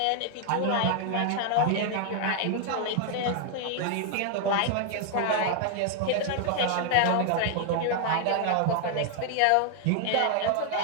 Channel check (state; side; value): different; both; correlation 0.00